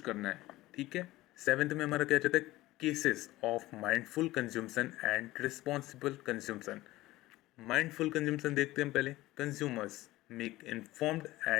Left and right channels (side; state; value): right; quieter; 17.6 dB